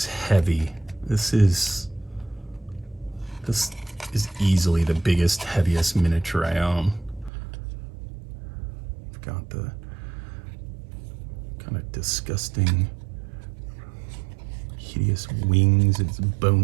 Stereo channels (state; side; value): drops out; left; at 7.3 s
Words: heavy. This is easily the biggest, heaviest miniature I own. I've got the kind of disgusting, hideous wings, its